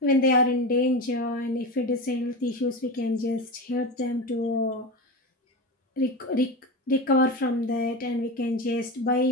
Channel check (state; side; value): normal; both; correlation 0.23